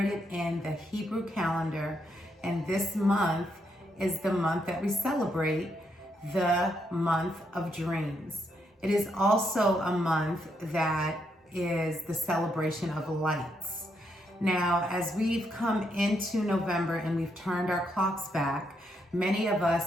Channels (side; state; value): both; normal; correlation 0.78